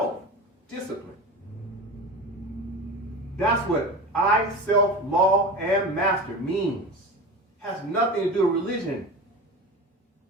That's what I, self, law, and master means. Has nothing to do with religion.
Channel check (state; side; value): normal; both; correlation 0.30